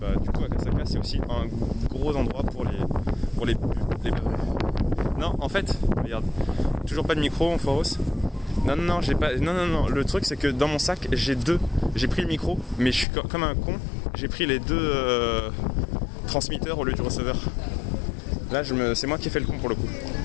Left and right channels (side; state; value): right; drops out; at 13.1 s